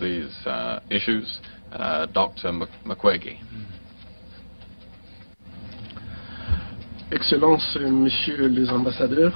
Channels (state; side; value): inverted; both; correlation -1.00